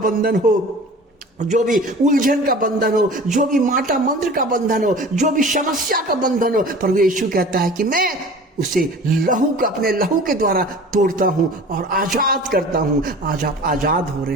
हो, जो भी उलझन का बंधन हो, जो भी माटा मंत्र का बंधन हो, जो भी समस्या का बंधन हो, प्रभु यीशु कहता है कि मैं उसे अपने लहू के द्वारा तोड़ता हूं और आजाद करता हूं। आज आप आजाद हो रहे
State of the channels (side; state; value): both; normal; correlation 0.41